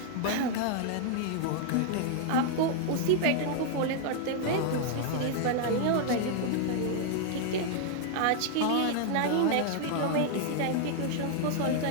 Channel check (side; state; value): both; different; correlation -0.01